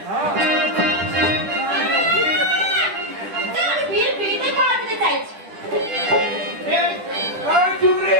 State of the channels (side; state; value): left; late; 10 ms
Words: আমি বিড়বিড়িতে পা দিতে চাইছি।